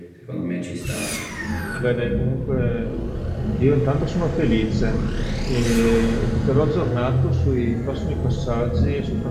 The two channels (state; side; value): identical; both; correlation 1.00